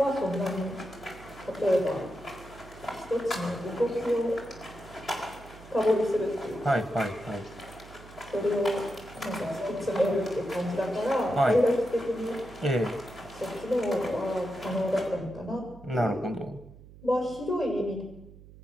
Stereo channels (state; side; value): noise; right; hum, 19 dB below the sound